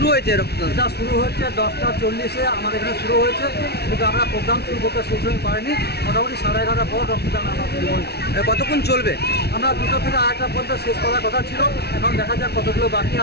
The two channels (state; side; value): late; right; 0.48 ms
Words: হয়েছে রক্তদান? এটা শুরু হচ্ছে 10টা 40-এ আমাদের এখানে শুরু হয়েছে, কিন্তু আমরা প্রোগ্রাম শুরু করতে সেই সময় পারিনি। মোটামুটি 11:30 পর রক্তদান আমরা শুরু করেছি। কতক্ষণ চলবে? আমরা 2টা থেকে 8টা পর্যন্ত শেষ করার কথা ছিল, এখন দেখা যাক কতগুলো বাকি